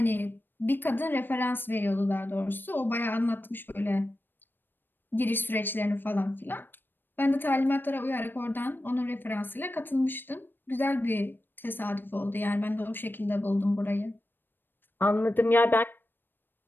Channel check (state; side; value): late; right; 0.095 ms